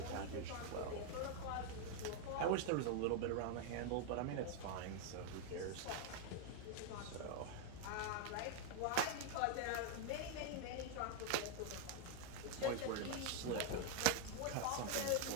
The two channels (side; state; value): both; different; correlation 0.00